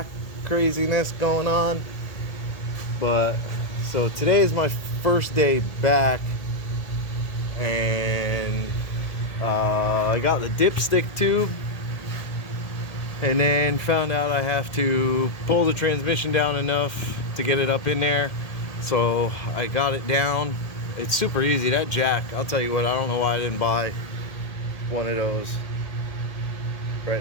craziness going on. But so today is my first day back. And I got the dipstick tube, and then found out I have to pull the transmission down enough to get it up in there. So I got it down. It's super easy. That jack, I'll tell you what, I don't know why I didn't buy one of those right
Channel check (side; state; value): right; late; 1.8 ms